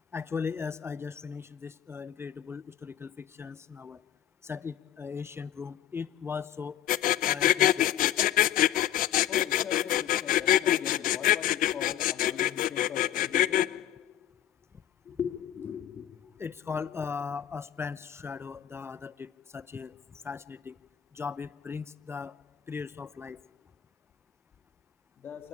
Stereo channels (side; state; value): right; quieter; 11.4 dB